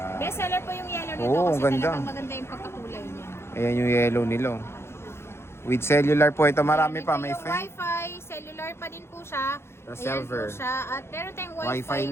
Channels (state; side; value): late; right; 0.12 ms